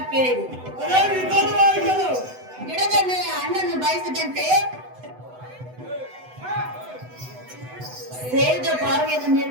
ಕೇಳಿರಿ. ಗಿಡದ ಮೇಲೆ ಹಣ್ಣನ್ನು ಬಯಸಿದಂತೆ ಸೇರಿದ ಬಾವಿಯನ್ನು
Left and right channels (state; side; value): late; left; 8.0 ms